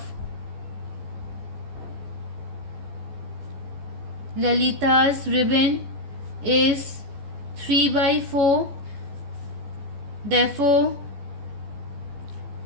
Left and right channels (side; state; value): left; late; 14 ms